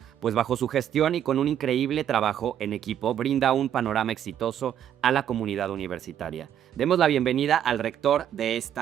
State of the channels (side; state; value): left; quieter; 10.0 dB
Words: pues bajo su gestión y con un increíble trabajo en equipo brinda un panorama exitoso a la comunidad universitaria. Demos la bienvenida al rector de